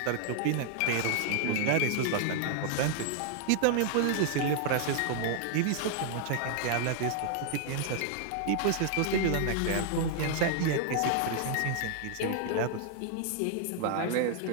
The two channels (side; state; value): both; different; correlation 0.00